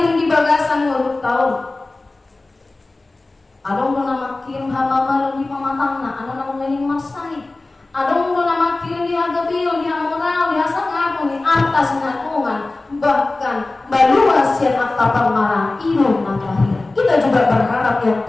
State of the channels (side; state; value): right; quieter; 3.1 dB